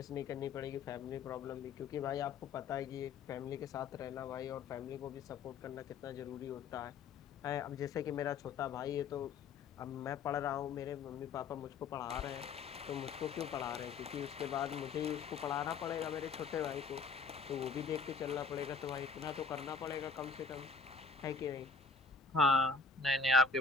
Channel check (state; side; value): quieter; right; 4.8 dB